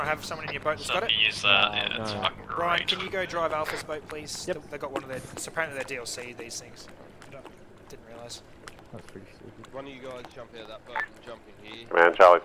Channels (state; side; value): identical; both; correlation 1.00